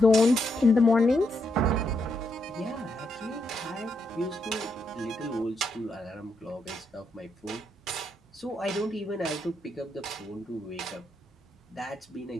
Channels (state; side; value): normal; both; correlation 0.79